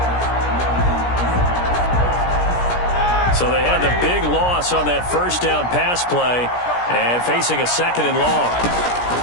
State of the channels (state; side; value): late; right; 17 ms